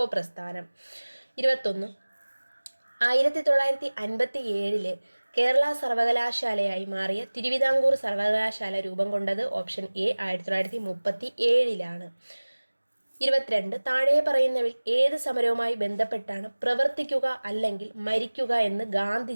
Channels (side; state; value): both; inverted; correlation -1.00